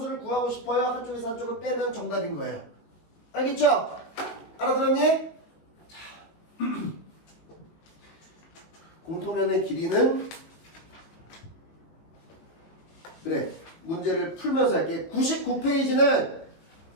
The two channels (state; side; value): late; right; 19 ms